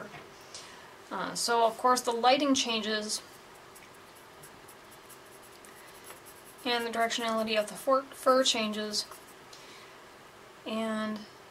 So of course the lighting changes, and the directionality of the fur changes, and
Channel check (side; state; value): both; identical; correlation 1.00